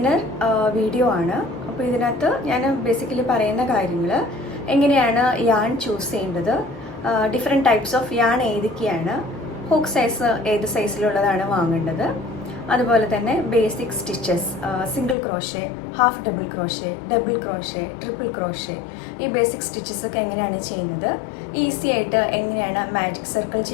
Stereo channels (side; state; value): right; drops out; at 15.2 s